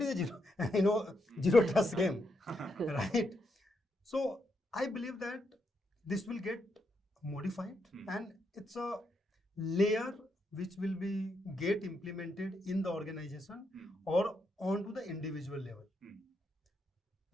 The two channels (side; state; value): both; normal; correlation 0.80